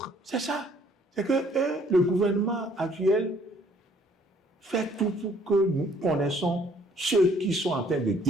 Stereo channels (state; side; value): normal; both; correlation 0.61